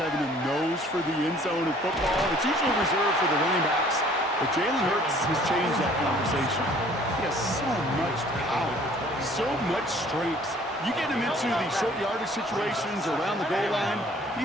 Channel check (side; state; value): both; normal; correlation 0.55